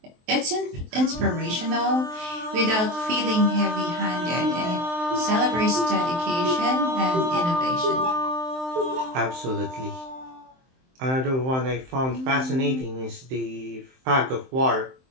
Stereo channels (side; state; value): left; late; 23 ms